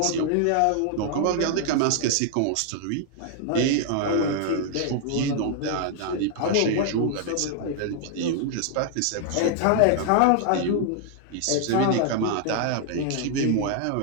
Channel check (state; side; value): different; both; correlation 0.00